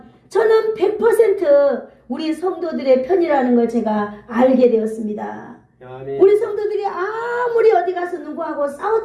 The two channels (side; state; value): both; identical; correlation 1.00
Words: 저는 100% 우리 성도들의 편이라는 걸 제가 알게 되었습니다. 아멘. 우리 성도들이 아무리 어디 가서 누구하고